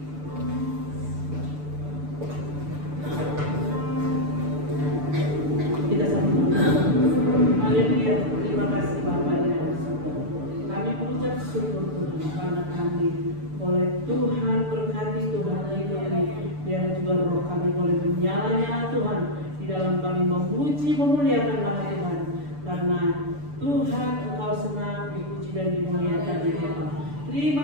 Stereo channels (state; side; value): late; left; 6.9 ms